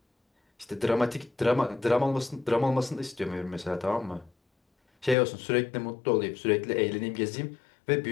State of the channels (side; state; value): right; drops out; at 5.2 s